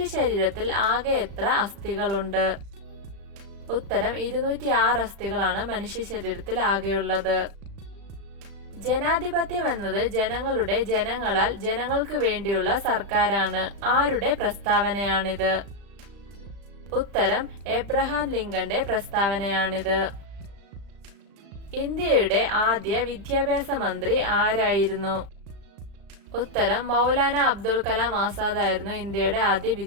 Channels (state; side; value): late; left; 36 ms